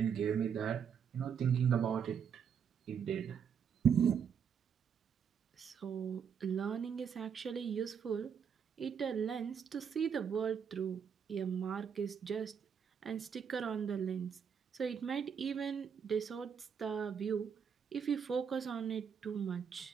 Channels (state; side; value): quieter; left; 7.2 dB